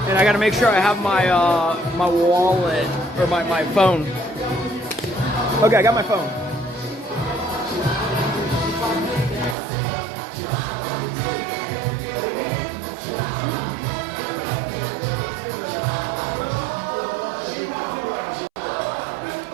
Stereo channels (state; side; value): drops out; left; at 9.6 s